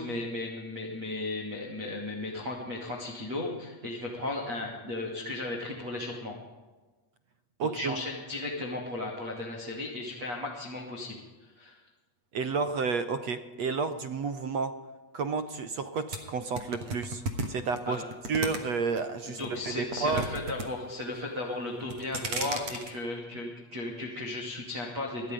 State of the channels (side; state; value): left; late; 8.4 ms